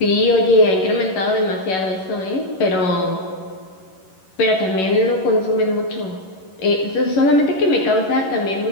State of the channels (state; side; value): late; right; 11 ms